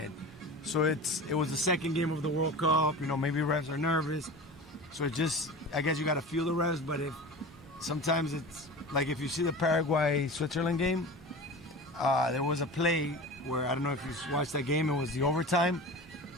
So it was the second game of the World Cup. You know, maybe refs are nervous. So I guess you got to feel the refs. But sometimes it's like if you see the Paraguay-Switzerland game, there was a play where I don't know if you watched that game. It was the overtime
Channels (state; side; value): normal; both; correlation 0.33